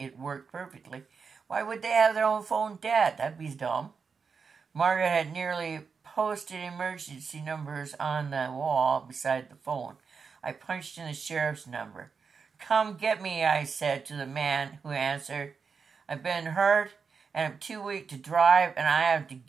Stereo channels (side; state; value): left; quieter; 5.6 dB